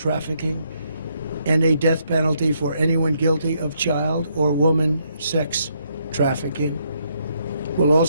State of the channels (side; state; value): both; inverted; correlation -0.74